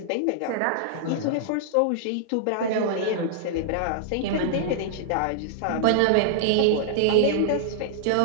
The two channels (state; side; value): different; both; correlation -0.01